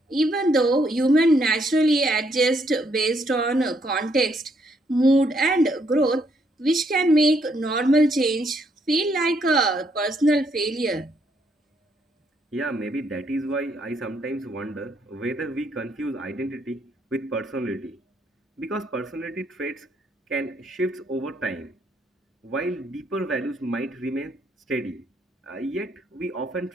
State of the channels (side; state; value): both; normal; correlation 0.72